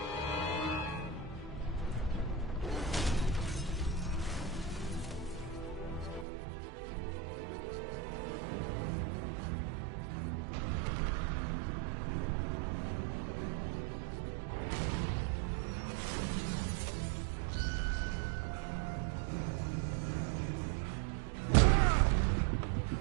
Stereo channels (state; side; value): drops out; left; at 6.2 s